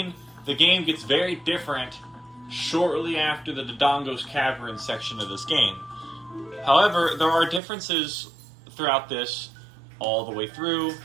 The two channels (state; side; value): drops out; left; at 7.6 s